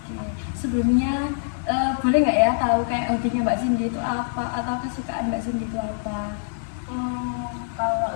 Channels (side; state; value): right; silent; 61 dB below the other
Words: Sebelumnya boleh nggak ya tahu kayak hobinya Mbak Cindy itu apa atau kesukaan Mbak Cindy itu apa? Kalau